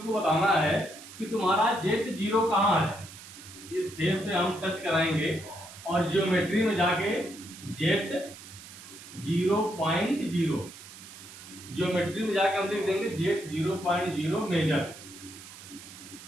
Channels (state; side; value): noise; right; hiss, 16 dB below the sound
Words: बताना है कि तुम्हारा जेड 0 कहाँ है। इस फेस पे हम टच कराएंगे और ज्योमेट्री में जाके जेड 0.0, ज्योमेट्री में जाके हम लिख देंगे जेड 0.0 मेजर।